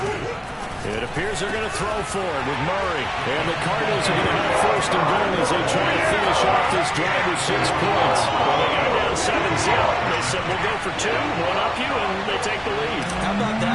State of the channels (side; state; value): both; identical; correlation 1.00